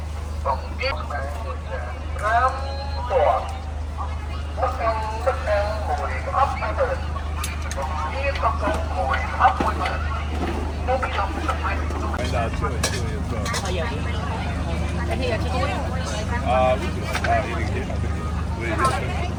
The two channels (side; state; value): both; identical; correlation 1.00